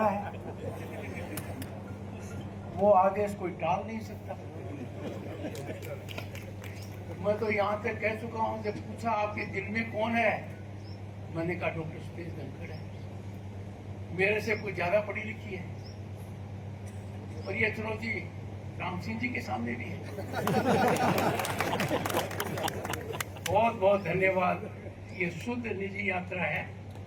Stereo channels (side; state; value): both; identical; correlation 1.00